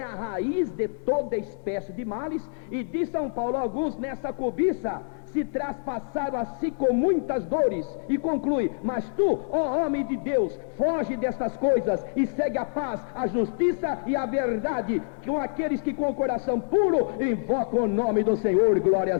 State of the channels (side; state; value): right; silent; 61 dB below the other